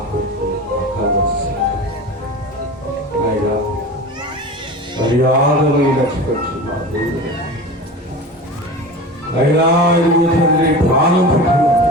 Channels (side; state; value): both; normal; correlation 0.32